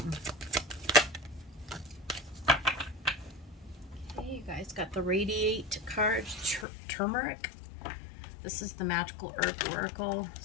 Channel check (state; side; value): drops out; right; at 6.7 s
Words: Okay, you guys got the Radiate card, Turmeric. This is the Magical Herb Oracle.